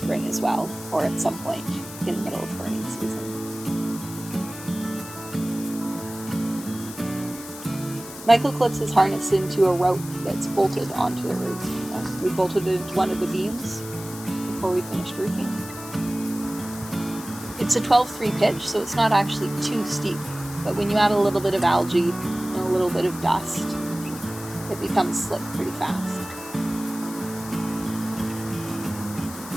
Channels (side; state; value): left; noise; hiss, 13 dB below the sound